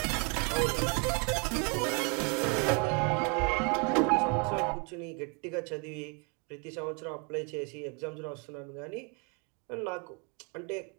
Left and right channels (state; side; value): quieter; left; 34.9 dB